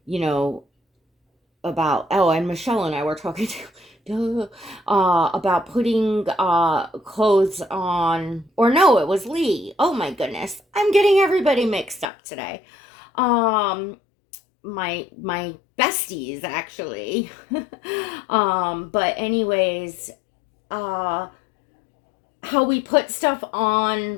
know, about, oh, and Michelle and I were talking about putting clothes on, or no, it was Lee. Oh my goodness, I'm getting everybody mixed up today. My besties actually. But anyways, uh how we put stuff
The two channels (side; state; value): right; drops out; at 12.1 s